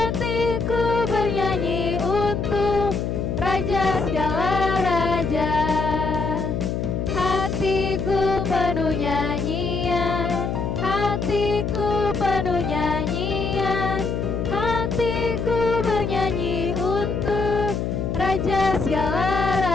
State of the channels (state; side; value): noise; left; hum, 1 dB below the sound